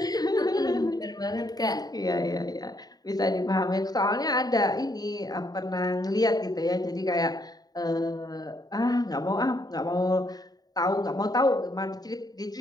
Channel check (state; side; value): late; right; 0.19 ms